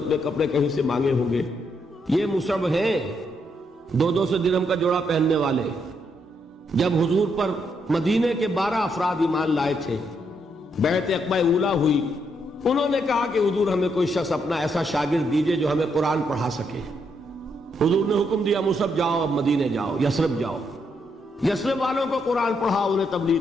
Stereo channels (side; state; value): both; normal; correlation 0.77